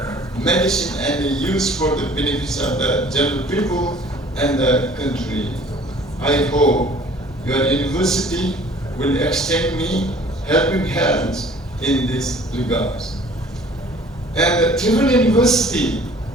medicine and the use for the benefits of the general people and the country. I hope your university will extend me helping hands in this regard. And the Tribhuvan University,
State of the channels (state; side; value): normal; both; correlation 0.52